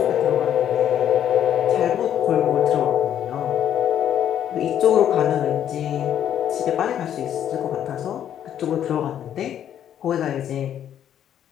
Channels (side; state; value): right; quieter; 10.1 dB